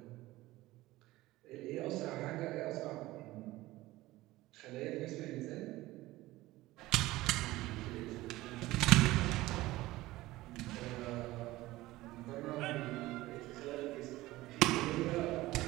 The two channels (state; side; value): quieter; left; 17.9 dB